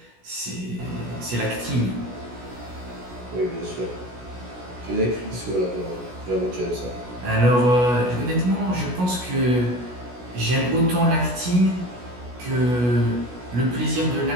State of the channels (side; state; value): left; late; 16 ms